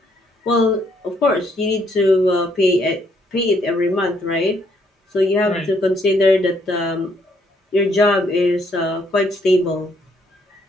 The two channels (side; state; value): both; normal; correlation 0.70